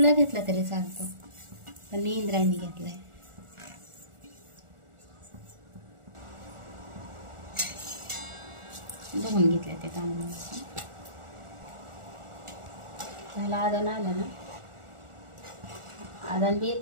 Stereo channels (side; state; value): left; late; 1.4 ms